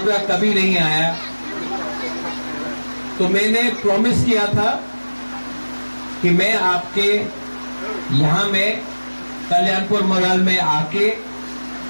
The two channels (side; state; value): both; inverted; correlation -1.00